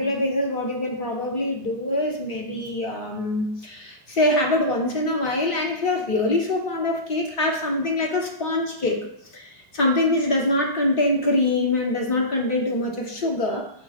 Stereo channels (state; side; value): late; right; 3.7 ms